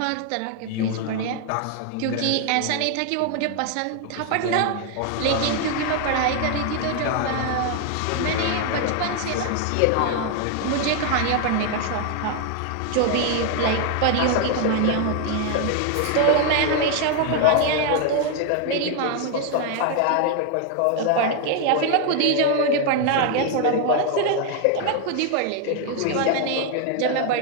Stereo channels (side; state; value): both; different; correlation 0.00